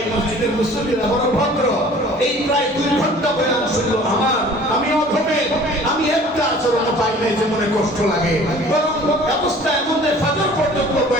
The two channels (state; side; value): normal; both; correlation 0.48